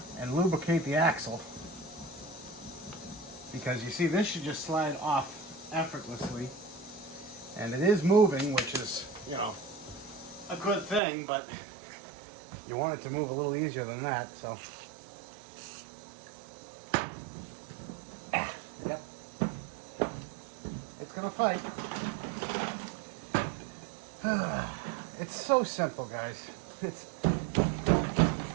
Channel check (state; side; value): drops out; left; at 11.0 s